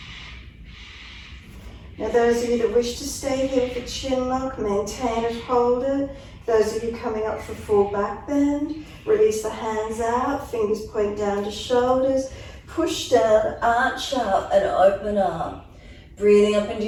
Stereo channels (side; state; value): both; identical; correlation 1.00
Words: Now those of you that wish to stay here with the chin lock, maintain it, hold it. Those of you coming up for full back bend, release the hands out, fingers point down to shoulders, push down, arch up and open up. Breathing up into